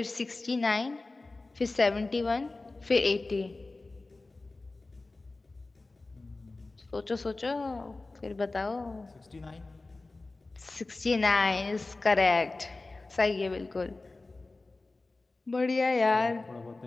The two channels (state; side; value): quieter; right; 3.3 dB